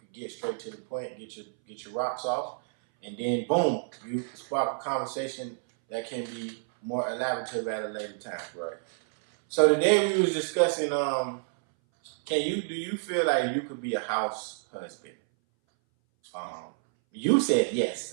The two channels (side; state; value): left; silent; 59 dB below the other